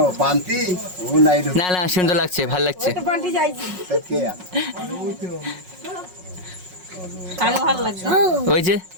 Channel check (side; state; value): left; late; 5.5 ms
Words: পান্তি ও নাই না না সুন্দর লাগছে ভালো লাগছে ভালো লাগছে ওই যে